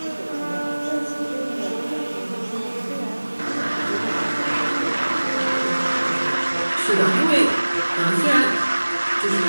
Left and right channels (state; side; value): inverted; both; correlation -1.00